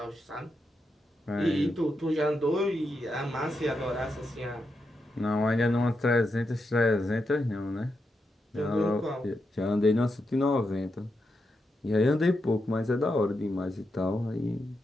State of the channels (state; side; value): normal; both; correlation 0.85